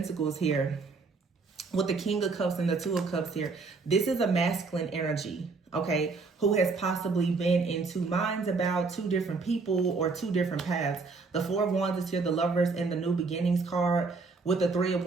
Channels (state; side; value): quieter; left; 4.2 dB